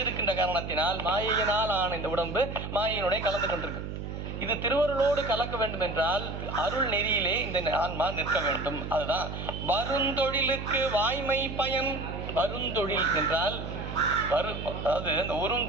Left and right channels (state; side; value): noise; right; hum, 7 dB below the sound